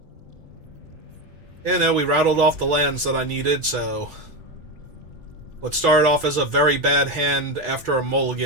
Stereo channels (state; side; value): late; left; 3.4 ms